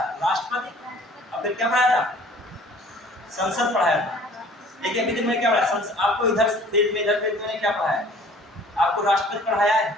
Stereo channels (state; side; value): normal; both; correlation 0.51